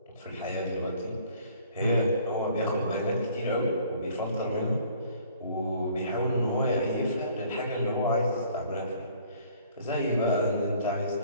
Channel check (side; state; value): both; inverted; correlation -0.57